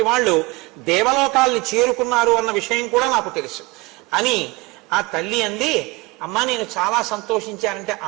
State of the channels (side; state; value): left; quieter; 23.7 dB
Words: వాళ్ళు దేవలోకాల్ని చేరుకున్నారు అన్న విషయం కూడా నాకు తెలుసు అని ఆ తల్లి అంది. అమ్మా, నేను చాలా సంతోషించానంటే